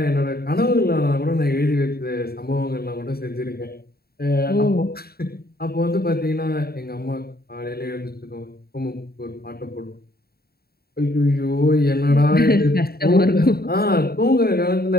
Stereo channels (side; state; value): right; late; 0.45 ms